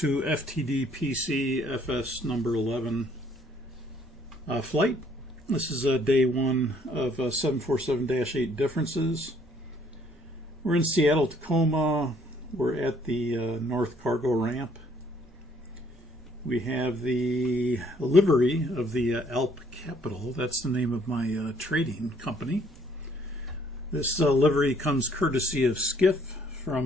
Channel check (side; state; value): both; normal; correlation 0.63